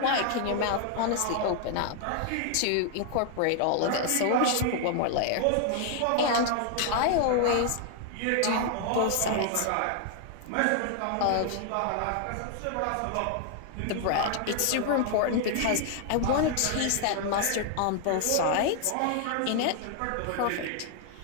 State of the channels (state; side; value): different; both; correlation 0.00